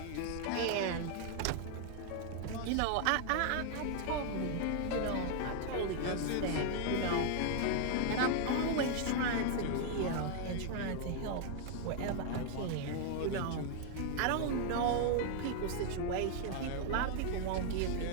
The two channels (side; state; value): both; different; correlation 0.00